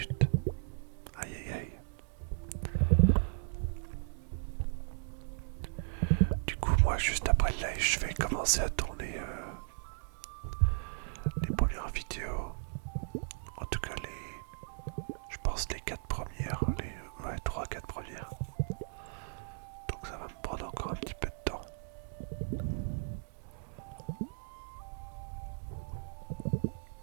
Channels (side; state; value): left; silent; digital silence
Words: Aïe aïe aïe. Du coup moi juste après le live je vais commencer à tourner les premières vidéos. En tout cas je pense les 4 premières. Ouais 3-4 premières. Donc ça va me prendre encore un petit peu de temps.